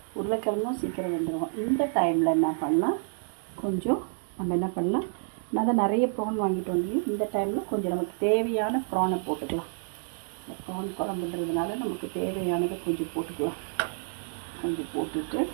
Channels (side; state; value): left; silent; 59 dB below the other